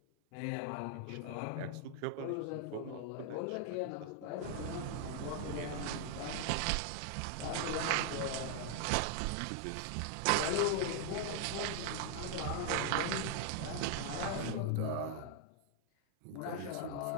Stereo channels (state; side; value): different; both; correlation 0.00